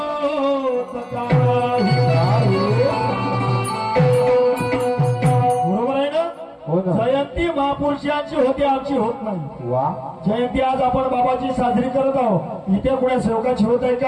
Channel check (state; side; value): identical; both; correlation 1.00